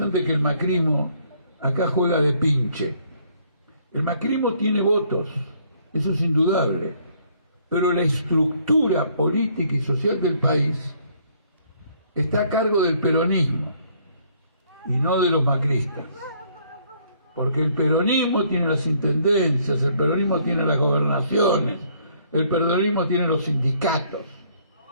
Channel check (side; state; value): both; inverted; correlation -0.65